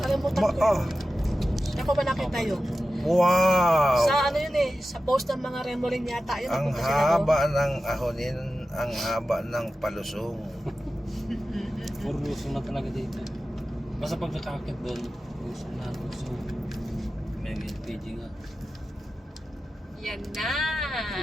ko. Oh. Ako ba nakita yun? Wow! Sa ano yun eh, sa post ng mga Remorin yata yun. Ang napunta sila doon. haba ng ahonin, ang haba ng palusong. Puro luso na talaga dito. Basta pag nakakit doon, gusto na gusto. May LPG nga. Yan na.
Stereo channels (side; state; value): both; normal; correlation 0.93